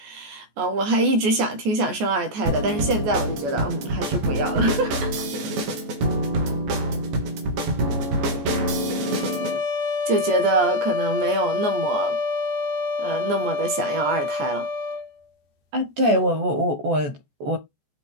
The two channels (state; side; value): late; left; 14 ms